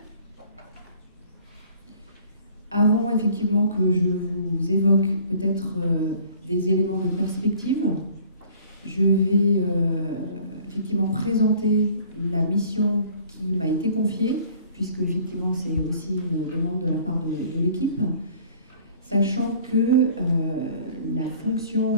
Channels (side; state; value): both; inverted; correlation -0.53